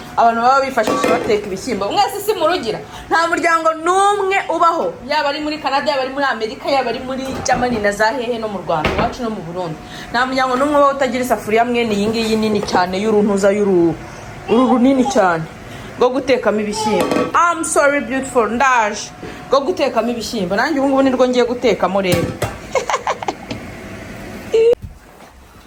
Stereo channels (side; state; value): both; identical; correlation 1.00